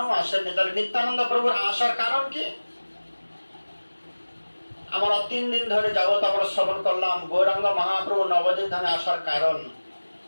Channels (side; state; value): both; inverted; correlation -1.00